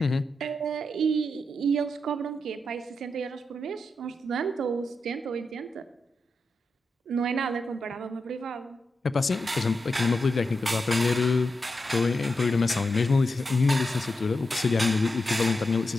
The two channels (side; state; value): both; normal; correlation 0.87